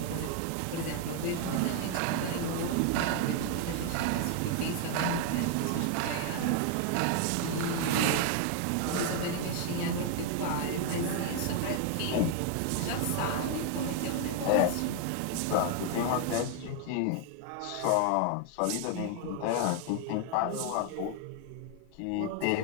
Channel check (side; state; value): both; different; correlation 0.00